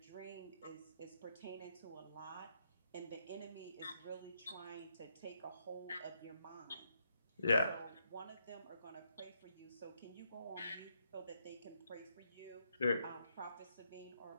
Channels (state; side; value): inverted; both; correlation -0.77